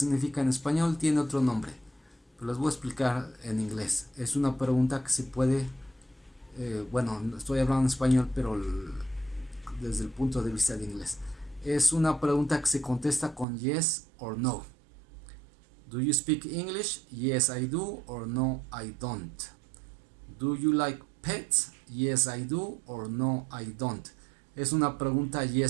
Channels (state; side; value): drops out; left; at 13.5 s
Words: en español? Tiene otro nombre, pero les voy a explicar en inglés. Es una pregunta que se puede, bueno, estoy hablando en español, pero desde el punto de vista de inglés. Es una pregunta que se contesta con yes or no. Do you speak English? Yes, I do, or no, I don't. Do you like pets? Yes, I do, or no, I don't. Es una pregunta